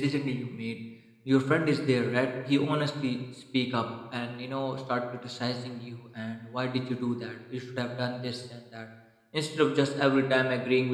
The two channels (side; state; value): both; identical; correlation 1.00